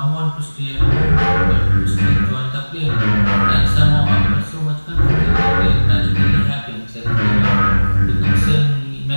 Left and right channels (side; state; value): both; inverted; correlation -1.00